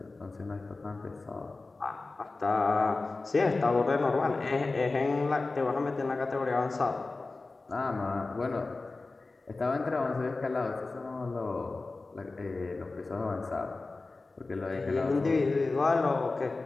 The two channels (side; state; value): right; quieter; 3.5 dB